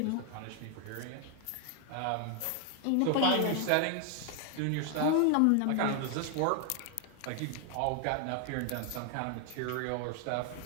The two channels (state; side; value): different; both; correlation 0.00